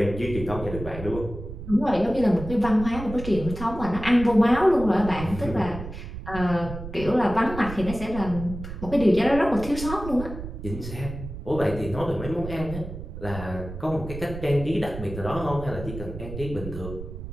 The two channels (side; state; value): right; noise; rumble, 10 dB below the sound